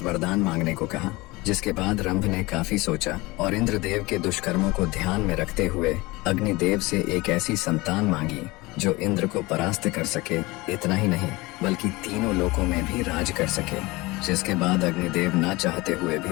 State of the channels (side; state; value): right; quieter; 22.3 dB